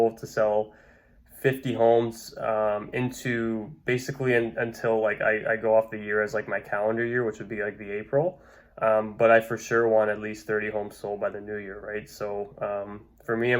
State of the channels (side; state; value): both; identical; correlation 1.00